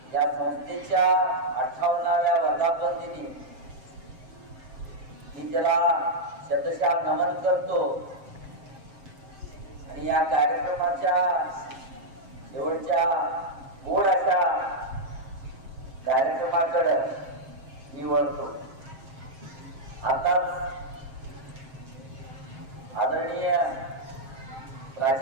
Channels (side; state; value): left; late; 7.6 ms